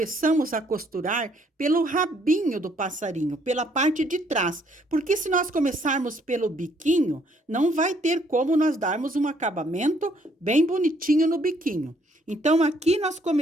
a costurar pelo rabinho do passarinho, pela parte de trás. Porque se nós começarmos pelo biquinho, não vai ter como nós darmos um acabamento bem bonitinho no biquinho. Então, aqui nós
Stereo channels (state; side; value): normal; both; correlation 0.67